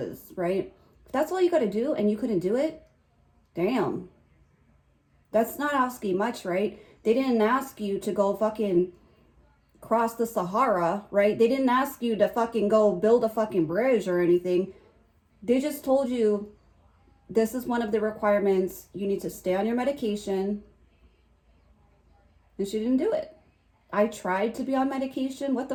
right? If that's all you gotta do and you couldn't do it, damn. That's not asking much, right? They didn't ask you to go fucking cross the Sahara, right? They didn't ask you to fucking go build a fucking bridge or anything. They just told you this is one of the requirements. You need to stay on your medication. And she didn't do it. I tried to be on medication. What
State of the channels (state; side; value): identical; both; correlation 1.00